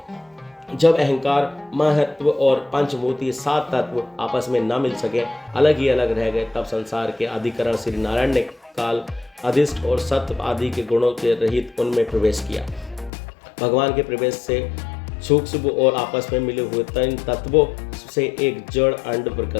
जब अहंकार, महत्व और पंचभूति 7 तत्व आपस में न मिल सके, अलग ही अलग रह गए, तब संसार के अधिकरण श्री नारायण ने काल, अधिष्ठ और सत्व आदि के गुणों के रहित उनमें प्रवेश किया। भगवान के प्रवेश से सूक्ष्म और आपस में मिले हुए 3 तत्वों से एक जड़ अंड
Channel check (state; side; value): drops out; right; at 13.1 s